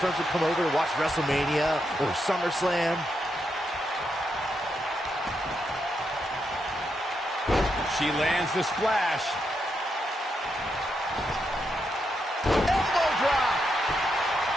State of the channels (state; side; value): normal; both; correlation 0.82